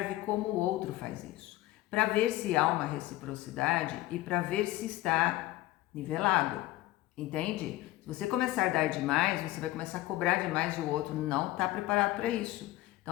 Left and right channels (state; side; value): quieter; right; 16.9 dB